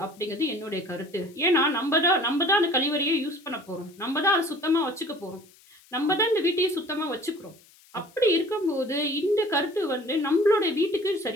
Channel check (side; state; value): left; noise; hiss, 27 dB below the sound